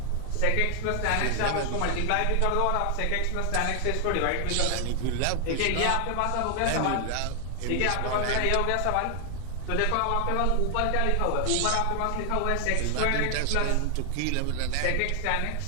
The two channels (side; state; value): both; different; correlation 0.00